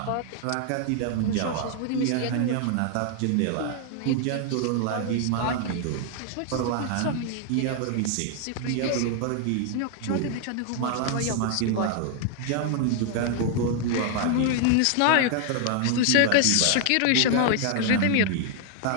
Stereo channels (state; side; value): different; both; correlation 0.00